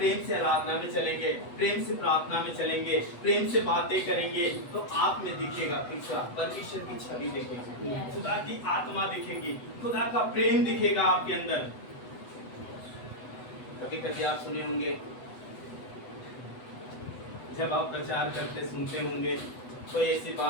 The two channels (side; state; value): right; late; 8.0 ms